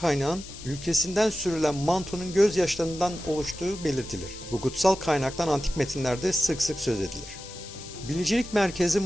ülkesinden sürülen Manto'nun gözyaşlarından oluştuğu belirtilir. Bu kutsal kaynaktan antik metinlerde sık sık söz edilir. Bilicilik Merkezi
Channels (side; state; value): left; noise; hiss, 14 dB below the sound